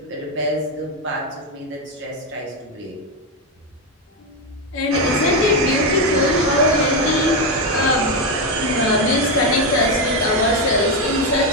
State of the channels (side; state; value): both; normal; correlation 0.08